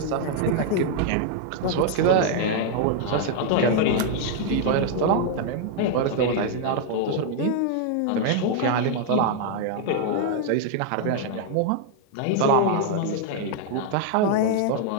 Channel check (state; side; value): different; both; correlation 0.00